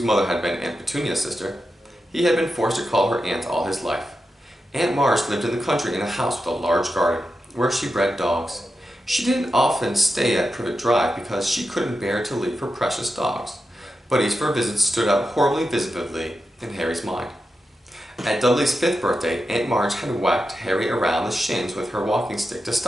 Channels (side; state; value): both; normal; correlation 0.89